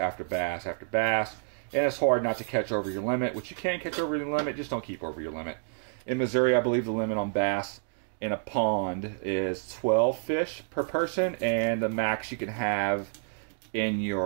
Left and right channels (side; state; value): left; silent; digital silence